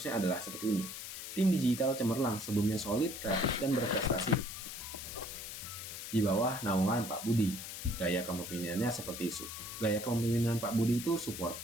adalah seperti ini. Tim digital cemerlang, sebelumnya solid, kreatif, dan berprestasi. Di bawah naungan Pak Budi, gaya kepemimpinan Pak Budi itu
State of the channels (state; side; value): noise; left; hiss, 8 dB below the sound